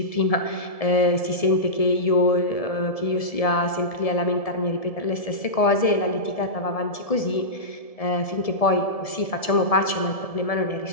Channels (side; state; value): right; late; 1.7 ms